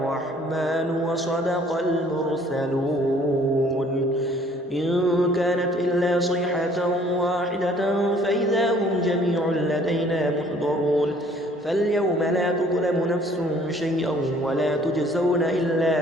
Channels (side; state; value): both; normal; correlation 0.57